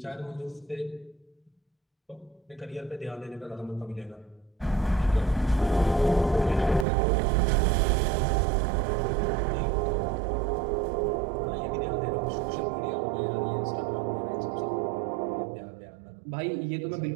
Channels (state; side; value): drops out; left; at 6.9 s